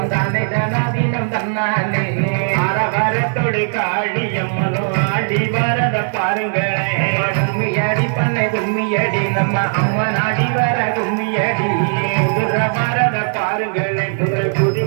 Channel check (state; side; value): silent; left; 68 dB below the other